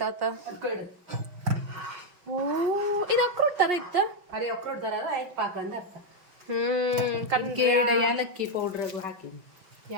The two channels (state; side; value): late; left; 5.6 ms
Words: ಆತ ಓ ಇದು ಅಕ್ರೋಟ್ ತರ ಇತ್ತ ಅರೆ ಅಕ್ರೋಟ್ ತರ ಆಯ್ತು ಪಾಕ ಅಂದ ಅರ್ಥ ಏಲಕ್ಕಿ ಪೌಡರ್ ಹಾಕಿ